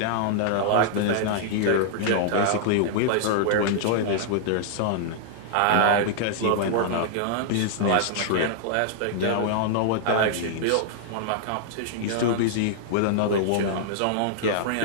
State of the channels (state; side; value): different; both; correlation -0.01